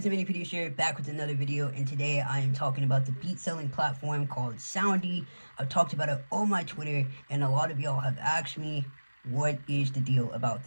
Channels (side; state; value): both; inverted; correlation -1.00